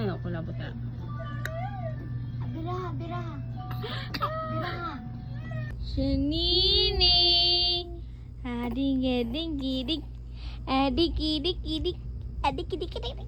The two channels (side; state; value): both; identical; correlation 1.00